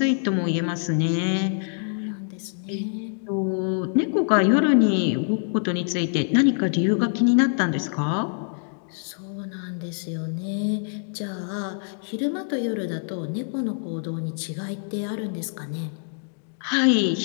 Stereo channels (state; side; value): silent; right; digital silence